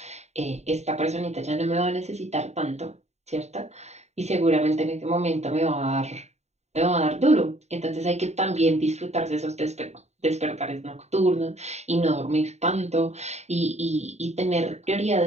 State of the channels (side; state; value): left; late; 0.32 ms